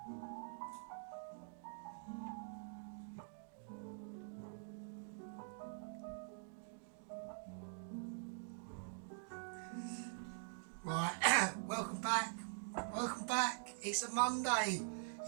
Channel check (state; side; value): silent; left; digital silence